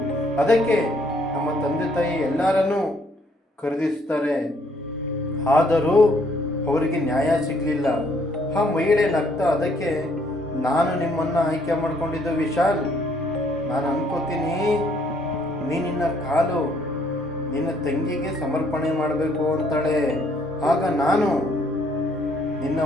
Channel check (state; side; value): normal; both; correlation 0.66